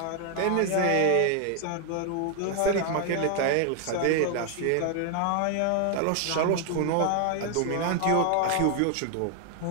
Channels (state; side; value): different; both; correlation 0.00